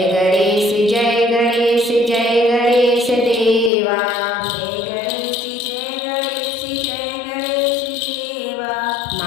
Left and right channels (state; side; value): drops out; right; at 3.7 s